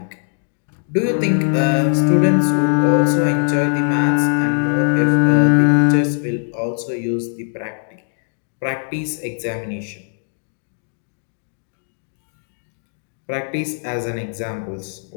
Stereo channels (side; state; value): right; silent; digital silence